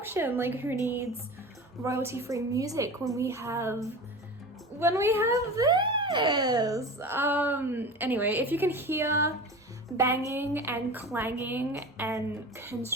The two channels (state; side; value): normal; both; correlation 0.33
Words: Like who needs royalty-free music when we have this? Anyway, if you can hear banging and clanging and